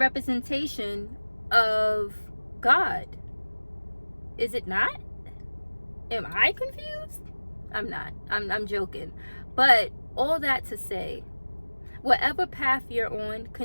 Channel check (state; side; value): inverted; both; correlation -1.00